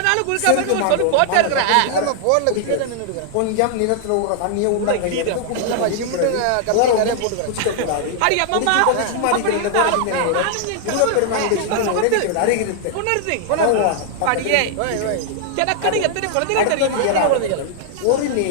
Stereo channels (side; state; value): both; different; correlation -0.01